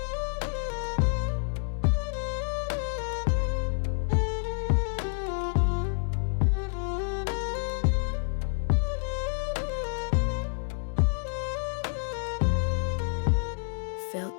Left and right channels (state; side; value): silent; right; 59 dB below the other